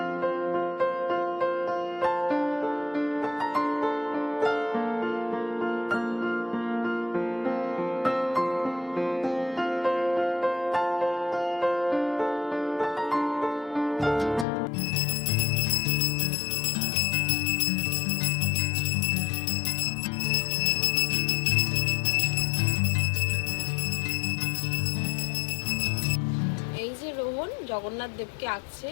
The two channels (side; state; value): right; drops out; at 14.5 s